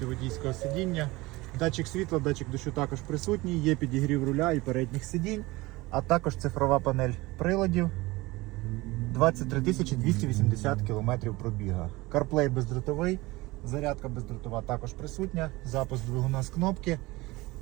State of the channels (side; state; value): left; quieter; 21.1 dB